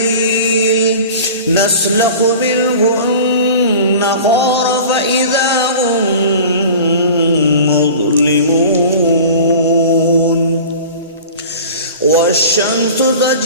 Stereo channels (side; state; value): both; inverted; correlation -0.39